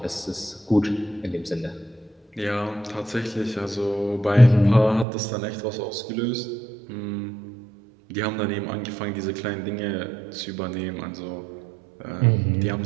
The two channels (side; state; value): left; drops out; at 5.1 s